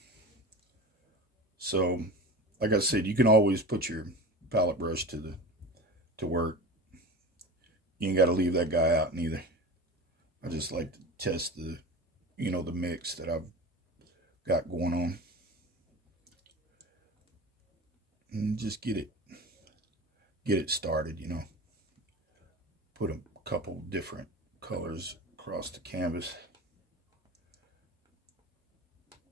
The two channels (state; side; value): normal; both; correlation 0.32